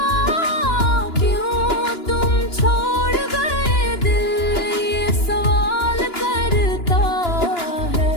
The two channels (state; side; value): late; right; 2.9 ms